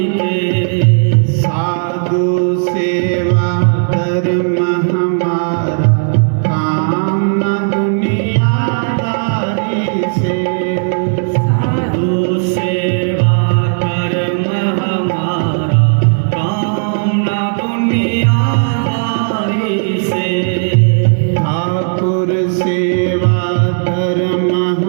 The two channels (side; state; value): left; silent; digital silence